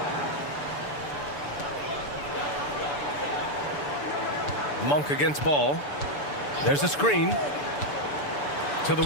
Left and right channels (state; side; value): late; right; 6.9 ms